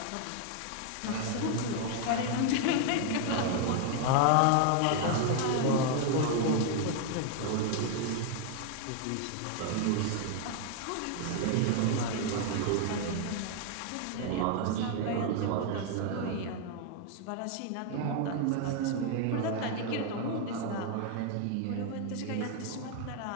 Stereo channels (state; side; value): different; both; correlation 0.00